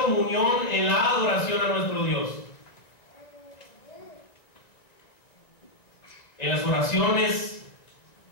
en la adoración a nuestro Dios. En las oraciones,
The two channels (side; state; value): right; late; 2.0 ms